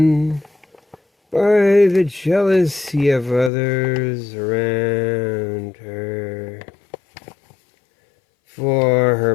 by the jealousy of others around her. For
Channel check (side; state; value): right; drops out; at 3.5 s